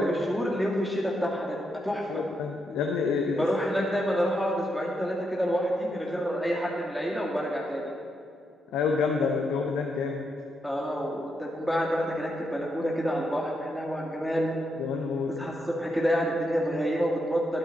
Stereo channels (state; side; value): normal; both; correlation 0.81